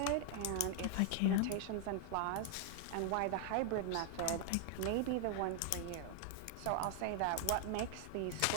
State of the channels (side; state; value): both; different; correlation 0.00